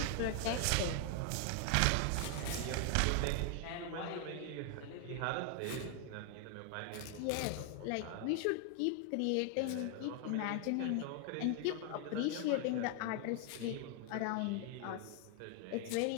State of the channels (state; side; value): different; both; correlation 0.00